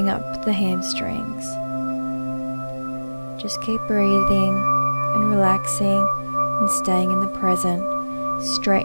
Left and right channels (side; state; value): both; inverted; correlation -1.00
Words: up the hamstrings. Just keep breathing and relaxing and staying in the present.